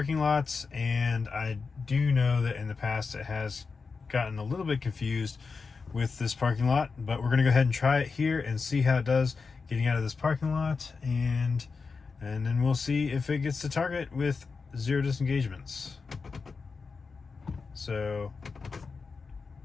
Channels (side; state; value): right; quieter; 4.7 dB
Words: lots, and I do know that in the past it has gotten a little bit confused with this parking lot, but we're going to go ahead and try it here and see how it does getting out of this parking lot, and then we'll see if it gets to Target with 0 disengagements. So